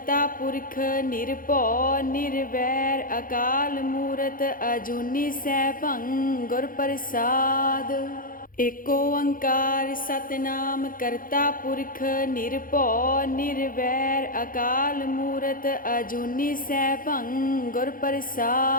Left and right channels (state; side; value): late; right; 0.40 ms